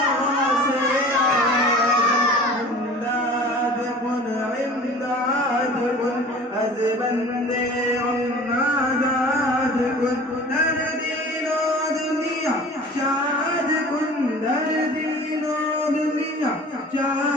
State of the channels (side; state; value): both; normal; correlation 0.43